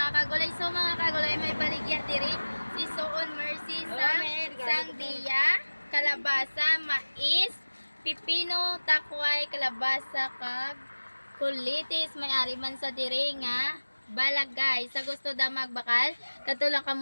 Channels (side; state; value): both; inverted; correlation -1.00